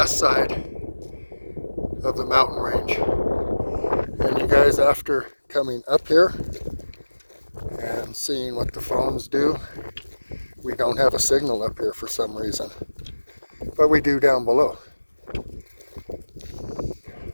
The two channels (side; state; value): both; inverted; correlation -1.00